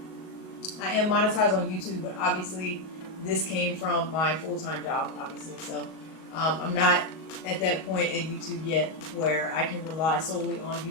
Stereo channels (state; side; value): late; right; 38 ms